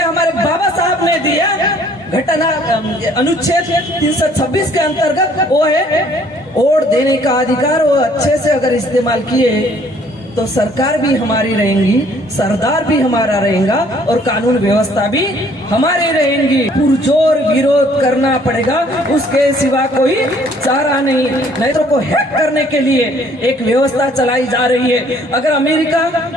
हमारे बाबा साहब ने दिया। घटना अनुच्छेद 326 के अंतर्गत वो है वोट देने का अधिकार। वो अच्छे से अगर इस्तेमाल किए तो सरकार भी हमारी रहेंगी, सरदार भी हमारा रहेगा और कानून व्यवस्था भी हमारी रहेंगी। पुरजोर विरोध करना पड़ेगा, उसके सिवा कोई चारा नहीं तो को हैक करने के लिए एक व्यवस्था चलाई जा रही है। अगर अमेरिका,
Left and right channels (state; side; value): normal; both; correlation 0.60